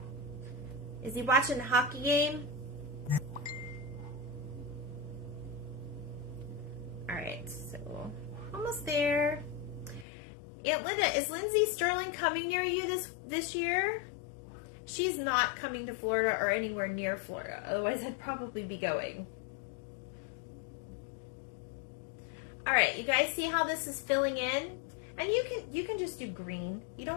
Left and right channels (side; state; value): right; drops out; at 10.1 s